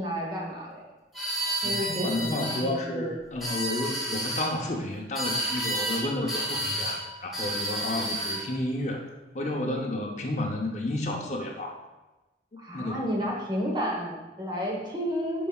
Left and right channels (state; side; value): normal; both; correlation 0.39